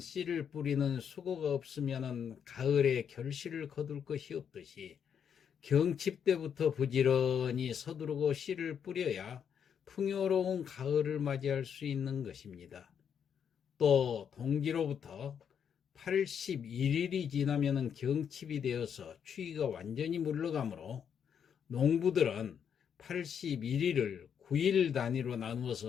뿌리는 수고가 없으면 가을에 결실을 거둘 것이 없듯이, 경칩 때부터 부지런히 서두르고 씨를 뿌려야 풍요로운 가을을 맞이할 수 있는 것입니다. 또 동지로부터 81일이 지나면 경칩이 되어서 추위가 완전히 물러가므로 농부들은 81일을 9일 단위로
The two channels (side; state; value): right; quieter; 7.8 dB